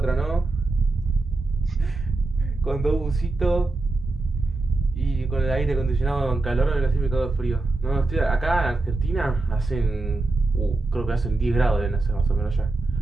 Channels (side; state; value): left; quieter; 3.2 dB